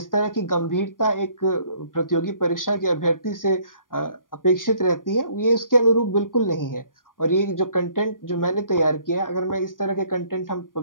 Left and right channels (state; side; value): late; right; 0.90 ms